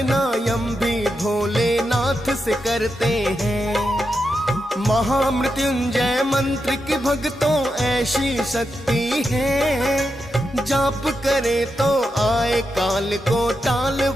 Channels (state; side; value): normal; both; correlation 0.87